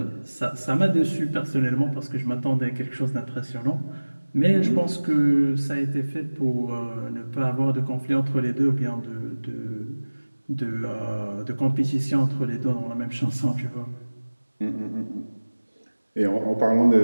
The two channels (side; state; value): both; inverted; correlation -1.00